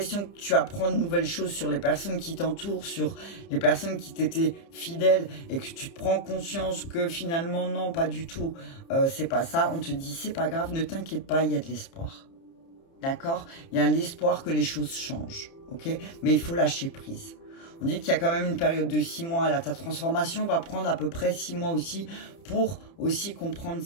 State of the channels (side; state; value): right; late; 30 ms